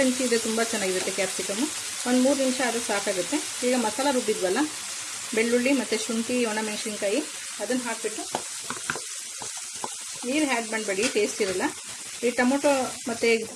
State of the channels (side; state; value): both; identical; correlation 1.00